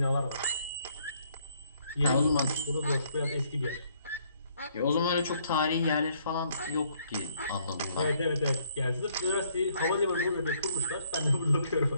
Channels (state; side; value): inverted; both; correlation -0.65